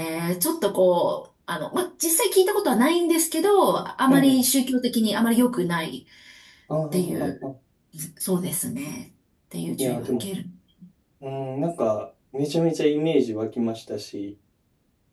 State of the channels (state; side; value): identical; both; correlation 1.00